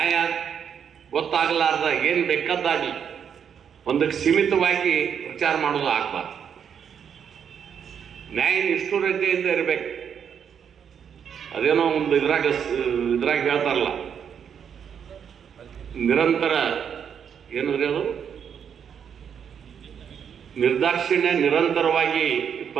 ಗೊತ್ತಾಗಲಾರ್ದ ಏನು ಬೇಕಾದಾಗಲಿ ಒಂದಕ್ಕೆ ಸೀಮಿತವಾಗಿ ಪ್ರಚಾರ ಮಾಡೋದು ಆಗಬಾರ್ದು. ನ್ಯಾಯ ನಿಷ್ಠುರತೆಯಿಂದ ಇರಬೇಕು. ಅದೇನೋ ಒಂದು ಇದ್ರಾಗ ಹೇಳ್ತಾರಲ್ಲ, ನಿರಂತರ ಏನಂದ್ರೆ ಅದು ನಿರ್ದಾಕ್ಷಿಣ್ಯ, ನಿರಂತರವಾಗಿ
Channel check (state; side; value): quieter; left; 7.8 dB